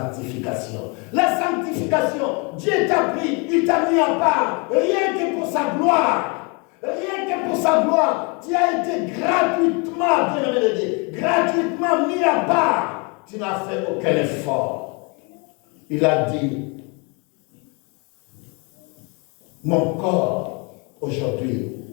La sanctification, Dieu t'a pris, il t'a mis à part, rien que pour sa gloire, rien que pour sa gloire. Tu as été gratuitement, bien-aimé de Dieu, gratuitement mis à part. Tu n'as fait aucun effort. Il a dit, mon corps, aujourd'hui,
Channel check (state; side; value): quieter; right; 32.2 dB